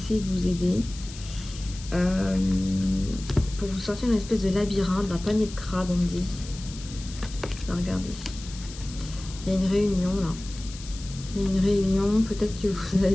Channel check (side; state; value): left; noise; hiss, 15 dB below the sound